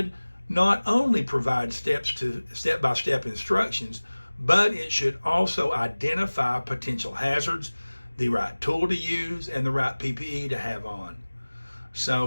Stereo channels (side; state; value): both; inverted; correlation -1.00